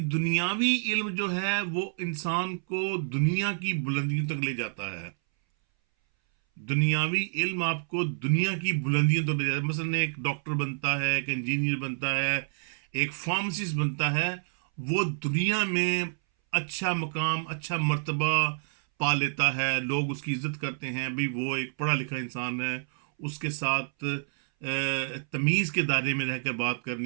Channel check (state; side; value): silent; left; 59 dB below the other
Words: دنیاوی علم جو ہے وہ انسان کو دنیا کی بلندیوں تک لے جاتا ہے. دنیاوی علم آپ کو دنیا کی بلندیوں تک لے جاتا ہے. مثلا ایک ڈاکٹر بنتا ہے، ایک انجینئر بنتا ہے، ایک فارماسسٹ بنتا ہے، وہ دنیا میں اچھا مقام، اچھا مرتبہ پا لیتا ہے، لوگ اس کی عزت کرتے ہیں، بھئی وہ ایک پڑھا لکھا انسان ہے، اس کے ساتھ تمیز کے دائرے میں رہ کر بات